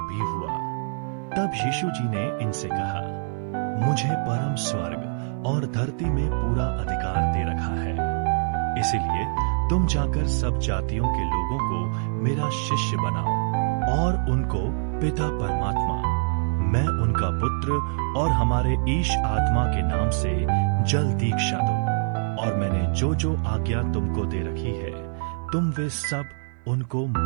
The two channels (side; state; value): left; silent; 56 dB below the other